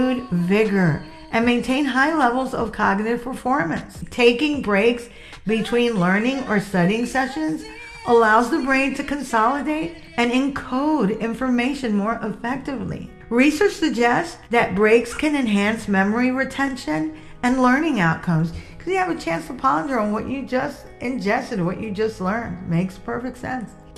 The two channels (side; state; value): both; identical; correlation 1.00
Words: vigor and maintain high levels of cognitive performance. Taking breaks between learning or studying sessions allows the brain to consolidate and encode information more effectively. Research suggests that breaks can enhance memory retention and learning outcomes because you have a chance to ponder on what you just ingested, what you just learned. Makes perfect sense.